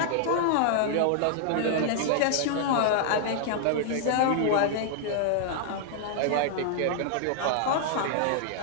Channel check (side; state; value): both; different; correlation -0.01